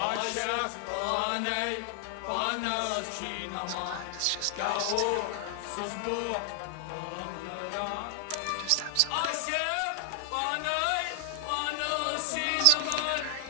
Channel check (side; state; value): both; different; correlation 0.00